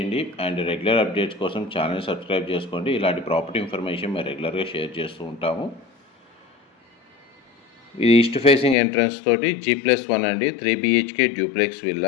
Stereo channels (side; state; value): right; drops out; at 8.8 s